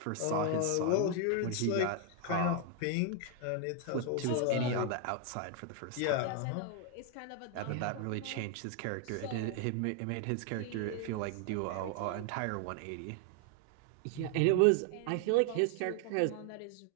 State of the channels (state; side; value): different; both; correlation 0.01